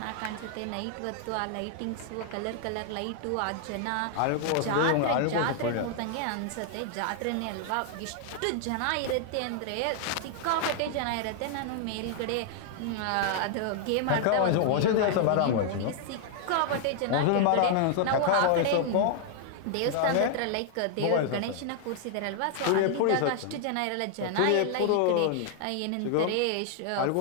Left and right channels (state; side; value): different; both; correlation 0.00